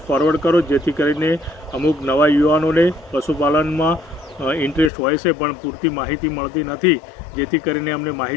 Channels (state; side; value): drops out; right; at 4.9 s